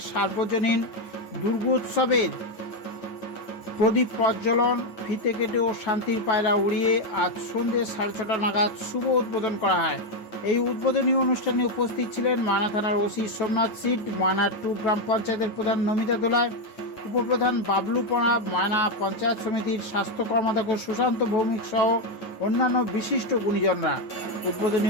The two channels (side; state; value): right; late; 9.2 ms